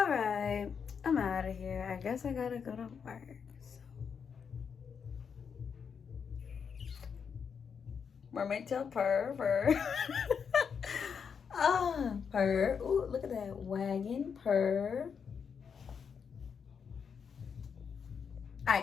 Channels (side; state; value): right; quieter; 6.6 dB